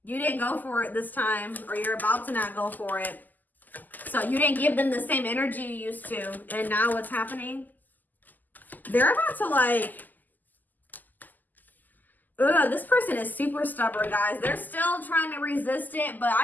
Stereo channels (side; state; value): right; late; 0.084 ms